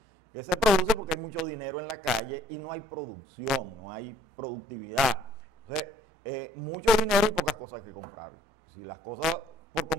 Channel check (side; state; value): both; normal; correlation 0.61